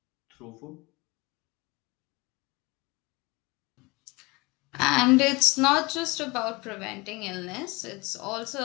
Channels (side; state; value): right; quieter; 24.8 dB